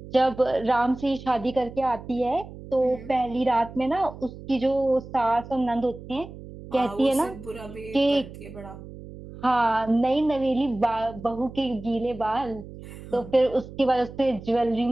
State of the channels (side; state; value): right; noise; hum, 15 dB below the sound